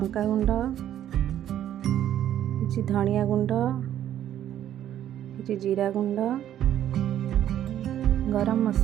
गुंड, किछि धनिया गुंड, किछि जीरा गुंड, गरम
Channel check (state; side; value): quieter; left; 11.3 dB